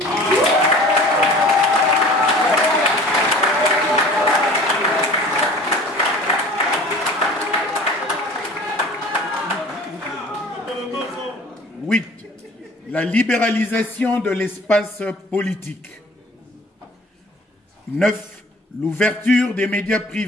La libéralisation de l'espace politique. 9. L'ouverture des médias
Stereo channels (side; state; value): both; normal; correlation 0.46